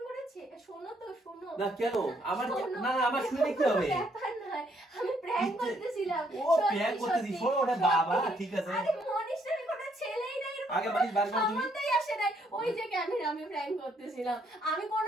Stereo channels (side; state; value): both; normal; correlation 0.70